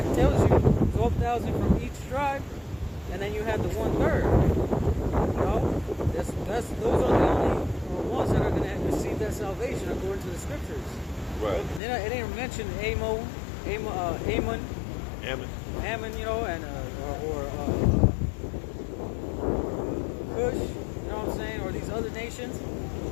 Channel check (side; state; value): right; drops out; at 11.8 s